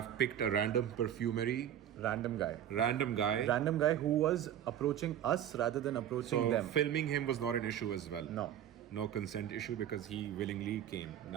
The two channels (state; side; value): quieter; left; 10.6 dB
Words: picked a random perfumery. Random guy. Random guy Who was approaching us rather than approaching So them. filming him was not an issue as well. No. Consent issue because he willingly came.